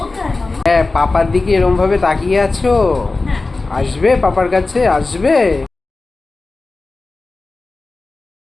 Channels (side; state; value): right; quieter; 3.5 dB